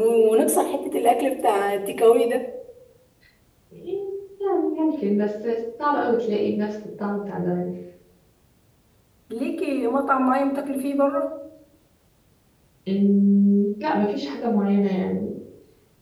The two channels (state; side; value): identical; both; correlation 1.00